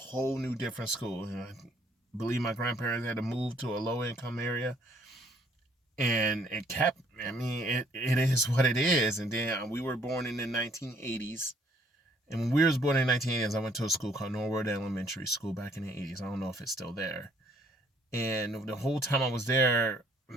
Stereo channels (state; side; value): normal; both; correlation 0.64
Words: new different school. I believe my grandparents had to move to a low income area, and it kept, it is what it is. And then we were born in the 1980s, and when we was born in the 1980s, I went to a school called Norwood Elementary School back in the 80s. I don't know if it's still there. And the whole time I was there,